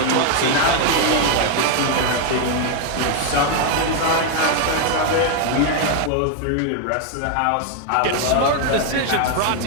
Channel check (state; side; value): different; both; correlation 0.00